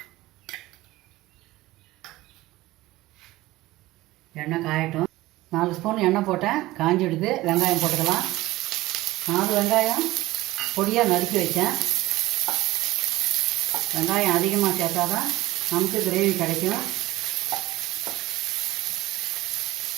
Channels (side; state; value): left; quieter; 18.0 dB